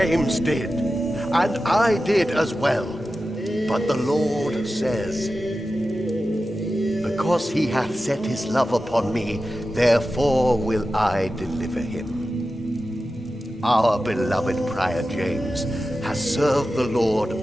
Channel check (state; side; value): normal; both; correlation 0.93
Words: did, and I did as well. But the Lord says, because he hath set his love upon me, therefore will I deliver him. Our beloved Prior James has served the Lord